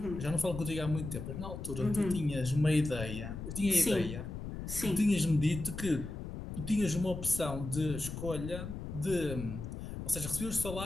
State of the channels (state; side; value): noise; left; rumble, 7 dB below the sound